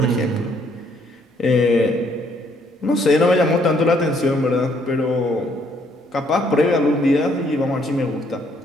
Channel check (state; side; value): normal; both; correlation 0.67